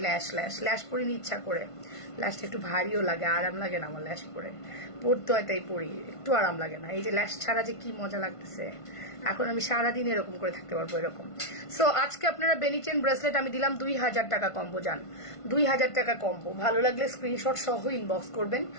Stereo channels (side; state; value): right; late; 1.5 ms